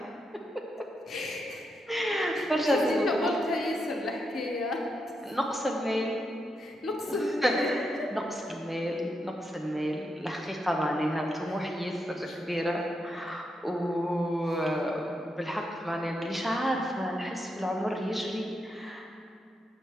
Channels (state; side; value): normal; both; correlation 0.83